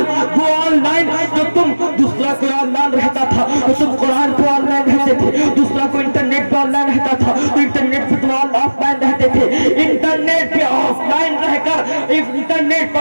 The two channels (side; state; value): both; inverted; correlation -1.00